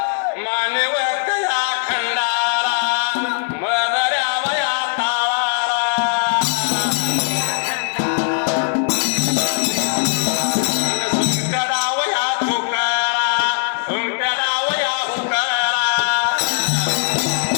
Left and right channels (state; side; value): silent; right; digital silence